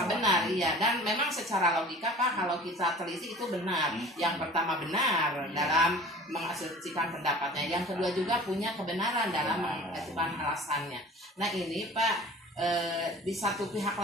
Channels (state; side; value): normal; both; correlation 0.43